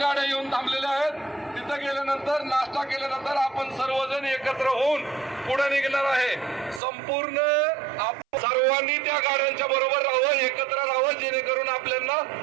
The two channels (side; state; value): left; drops out; at 6.8 s